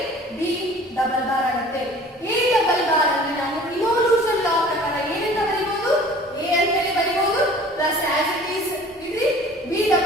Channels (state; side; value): normal; both; correlation 0.47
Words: B ಡಬಲ್ ಬಾರ್ ಆಗುತ್ತೆ. A ಡಬಲ್ ಬಾರ್ ಅಂದ್ರೆ ನಾವು ಇನ್ವಲ್ಯೂಷನ್ ಲಾ ಪ್ರಕಾರ ಏನಂತ ಬರೀಬಹುದು? A ಅಂತ ಹೇಳಿ ಬರೀಬಹುದು, ಪ್ಲಸ್ ಆಸ್ ಇಟ್ ಈಸ್ ಇದ್ರಿ. B